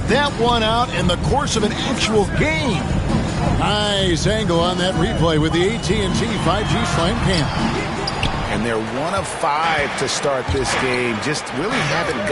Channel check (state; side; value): identical; both; correlation 1.00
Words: that one out in the course of an actual game. Nice angle on that replay with the AT&T 5G Slam Cam. And they're 1 of 5 to start this game. Just really haven't